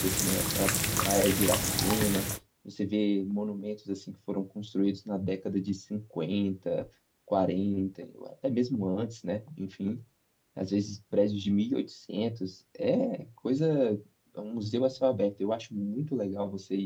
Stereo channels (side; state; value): both; identical; correlation 1.00